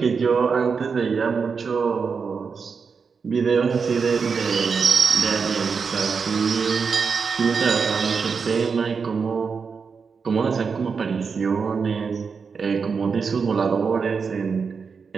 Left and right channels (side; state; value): left; quieter; 5.5 dB